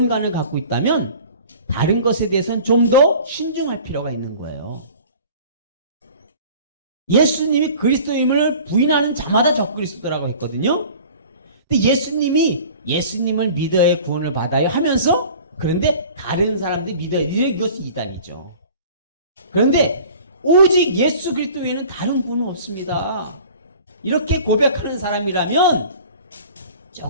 갖고 있다면 다른 것에 대해서는 좀 더 신중할 필요가 있는 거예요. 예수님이 그리스도임을 부인하는 자마다 적그리스도라고 했거든요. 근데 예수님을 믿어야 구원을 받아요 하면서 그런데 다른 사람들이 믿어야 이것이 이단이죠. 그런데 오직 예수 그리스도 외에는 다른 구원은 없습니다. 이렇게 고백하는 사람이라면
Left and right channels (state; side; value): inverted; both; correlation -0.45